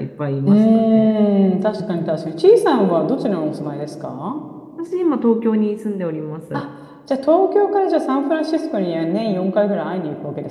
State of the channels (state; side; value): identical; both; correlation 1.00